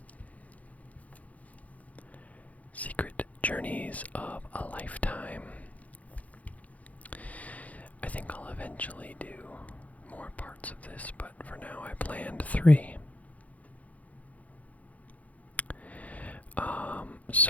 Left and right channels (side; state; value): right; late; 0.070 ms